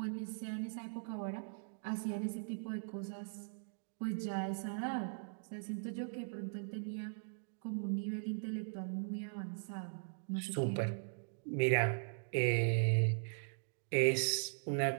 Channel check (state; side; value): silent; left; digital silence